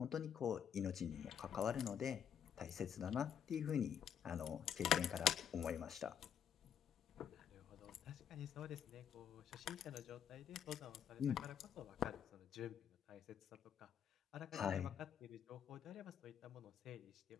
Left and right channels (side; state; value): right; quieter; 8.7 dB